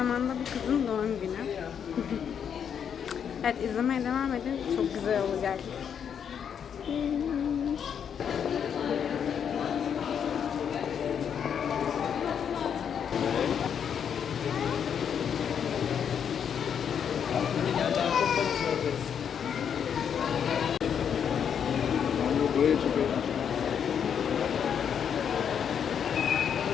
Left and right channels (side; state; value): right; quieter; 7.9 dB